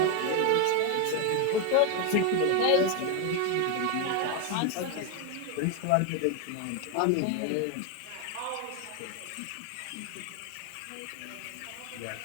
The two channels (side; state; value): both; different; correlation 0.01